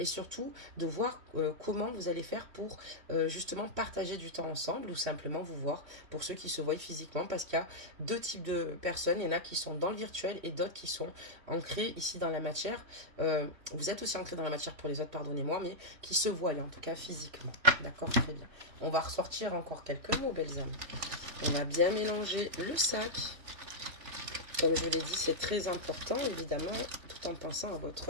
surtout de voir comment vous allez faire pour justement partager du temps ensemble ou simplement vous voir pour ceux qui se voient physiquement, parce qu'il y a deux types de personnes. Il y en a qui sont dans le virtuel et d'autres qui sont ancrés ici dans la matière. Vous êtes aussi ancrés dans la matière pour les autres, pardonnez-moi, mais qui se voient en tout cas physiquement. D'accord, très bien. On va ressortir encore quelques mots, belles âmes. On a bien mélangé le sac. Comme je vous l'ai dit, c'est très important, évidemment, tout en pensant à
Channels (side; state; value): left; late; 3.0 ms